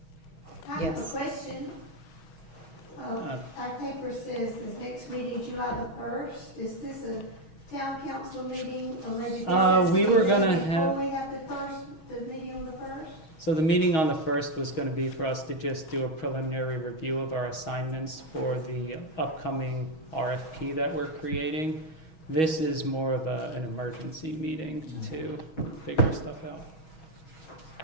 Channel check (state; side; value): late; right; 6.3 ms